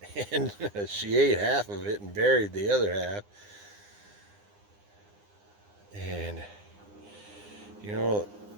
and she ate half of it and buried the other half. And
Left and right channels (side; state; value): left; late; 9.8 ms